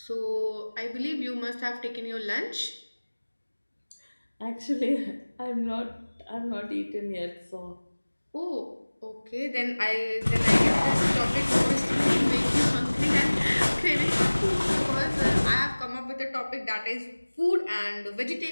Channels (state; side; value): inverted; both; correlation -1.00